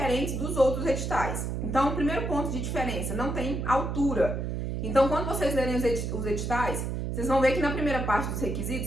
dos outros editais. Então, o primeiro ponto de diferença, não tem altura. Então, quando vocês lerem os editais, vocês vão ver que na primeira parte dos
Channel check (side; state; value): right; noise; hum, 3 dB below the sound